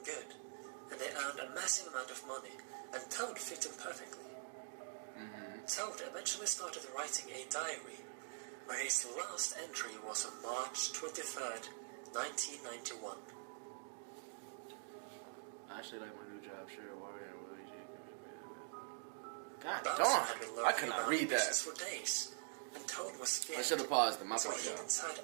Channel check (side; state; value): left; silent; digital silence